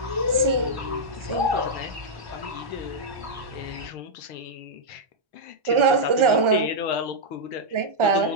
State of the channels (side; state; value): left; late; 1.4 ms